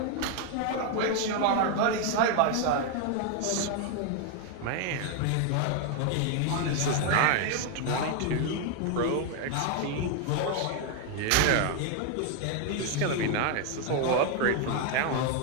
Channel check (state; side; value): different; both; correlation 0.01